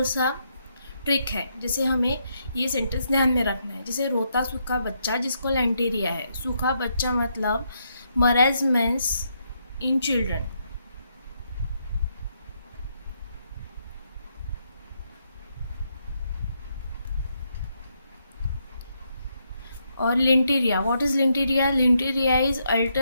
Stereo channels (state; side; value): inverted; both; correlation -0.78